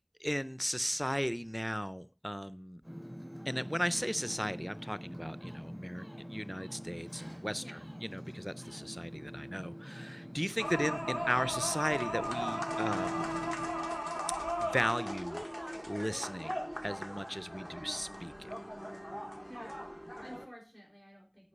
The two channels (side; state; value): both; identical; correlation 1.00